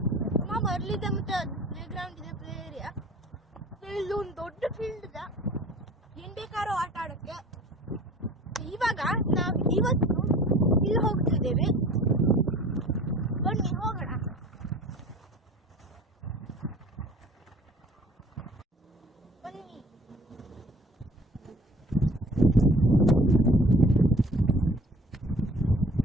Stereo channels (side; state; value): both; normal; correlation 0.47